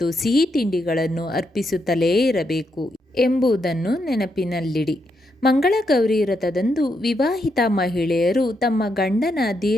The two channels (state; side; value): normal; both; correlation 0.80